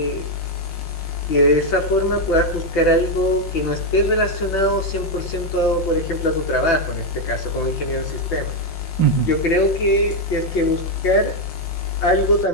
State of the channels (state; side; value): late; right; 5.6 ms